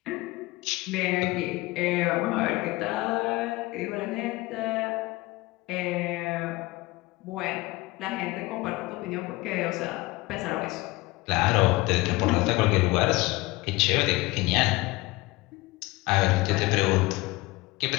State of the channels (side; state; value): right; quieter; 21.2 dB